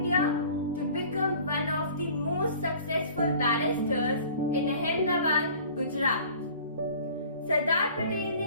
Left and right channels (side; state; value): both; inverted; correlation -0.47